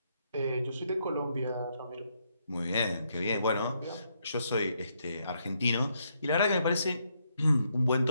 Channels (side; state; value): both; inverted; correlation -0.76